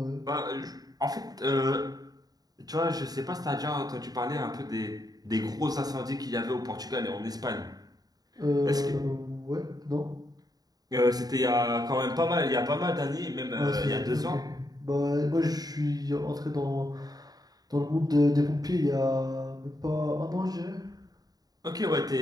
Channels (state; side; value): late; left; 0.18 ms